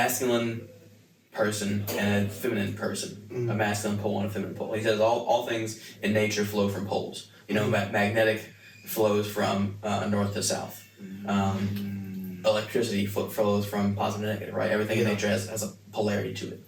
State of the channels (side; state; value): both; identical; correlation 1.00